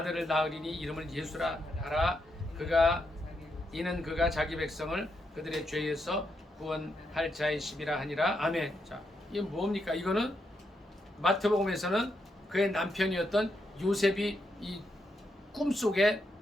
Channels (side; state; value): both; normal; correlation 0.81